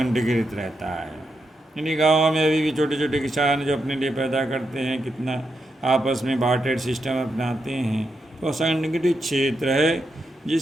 रहता है। यानी गाँव में अभी भी छोटे छोटे किसान जो अपने लिए पैदा करते हैं, कितना आपस में बार्टर सिस्टम अपनाते हैं, तो संगठित क्षेत्र है,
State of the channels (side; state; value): both; normal; correlation 0.84